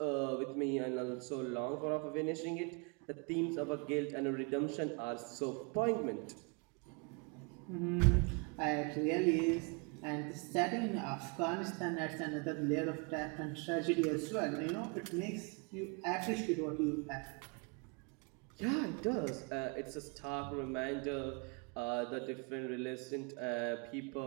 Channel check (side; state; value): left; quieter; 32.6 dB